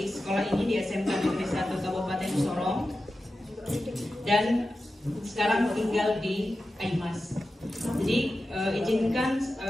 sekolah ini di SMK Negeri 1 Kabupaten Sorong dan sekarang tinggal di Aimas. Jadi izinkan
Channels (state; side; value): normal; both; correlation 0.93